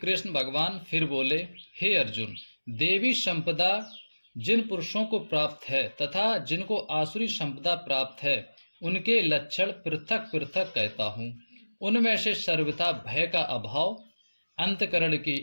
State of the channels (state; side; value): inverted; both; correlation -1.00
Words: भगवान फिर बोले, हे अर्जुन, देवी संपदा जिन पुरुषों को प्राप्त है तथा जिनको आसुरी संपदा प्राप्त है, उनके लक्षण पृथक पृथक कहता हूँ। उनमें से सर्वथा भय का अभाव, अंतकरण की